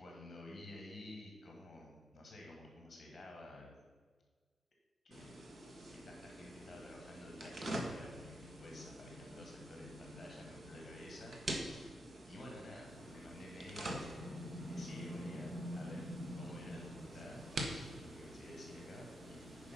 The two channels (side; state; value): both; normal; correlation 0.81